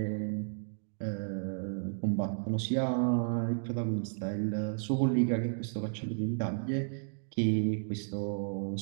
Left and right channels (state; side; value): silent; left; digital silence